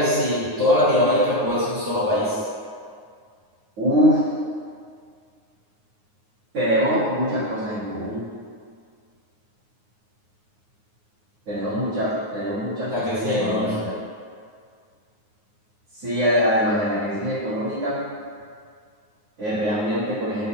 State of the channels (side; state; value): left; late; 9.5 ms